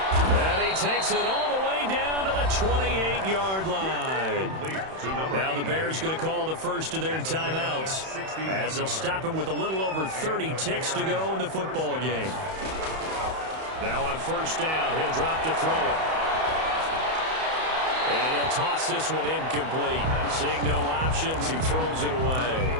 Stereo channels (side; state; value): left; late; 31 ms